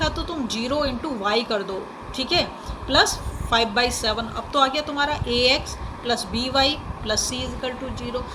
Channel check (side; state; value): both; identical; correlation 1.00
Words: तो तुम 0 इंटू वाई कर दो, ठीक है, प्लस 5/7। अब तो आ गया तुम्हारा ax plus B Y plus C equal to 0।